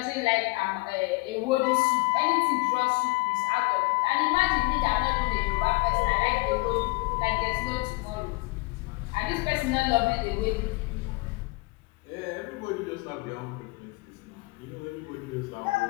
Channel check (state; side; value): quieter; right; 24.2 dB